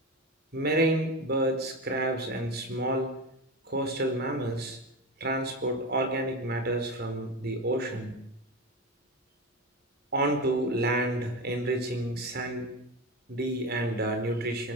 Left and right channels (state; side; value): normal; both; correlation 0.22